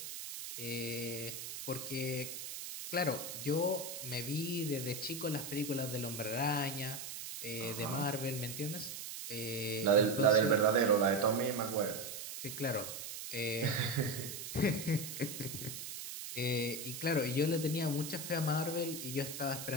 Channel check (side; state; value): right; noise; hiss, 8 dB below the sound